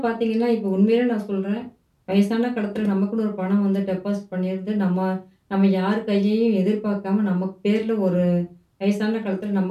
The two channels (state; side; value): identical; both; correlation 1.00